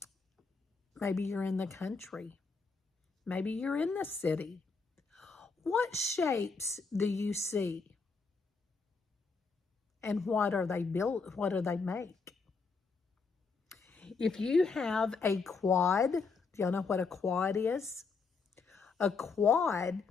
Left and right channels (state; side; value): quieter; right; 4.6 dB